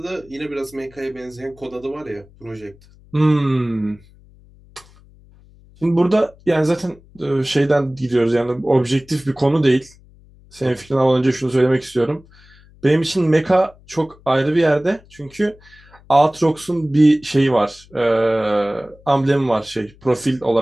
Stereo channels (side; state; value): left; noise; hum, 26 dB below the sound